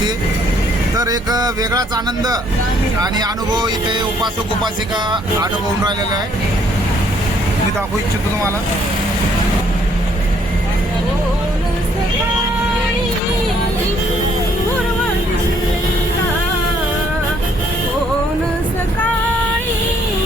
तर एक वेगळाच आनंद आणि अनुभव इथे उपासक उपासिका अनुभवून राहिलेला आहे. मी दाखवू इच्छितो तुम्हाला.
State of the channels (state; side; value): normal; both; correlation 0.66